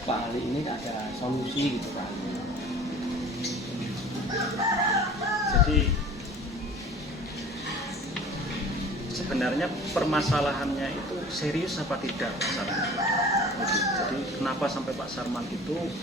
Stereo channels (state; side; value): normal; both; correlation 0.44